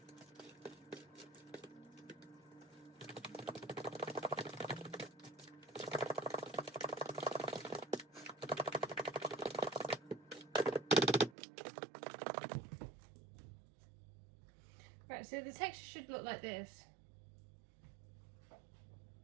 Right, so the texture should look like this. You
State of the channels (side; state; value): left; drops out; at 11.4 s